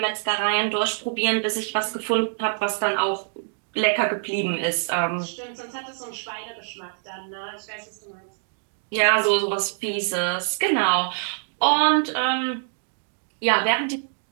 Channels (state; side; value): silent; left; digital silence